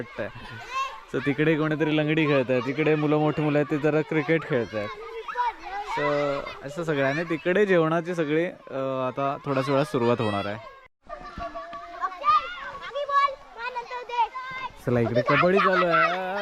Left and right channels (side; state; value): both; identical; correlation 1.00